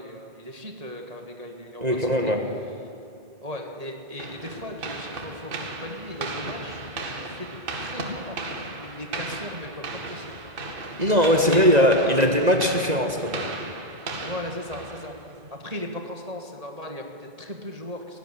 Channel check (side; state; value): left; late; 1.9 ms